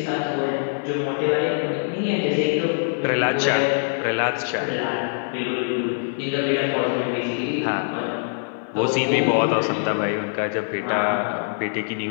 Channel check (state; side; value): silent; right; 58 dB below the other